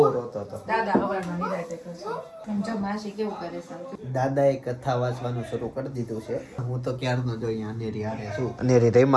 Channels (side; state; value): both; identical; correlation 1.00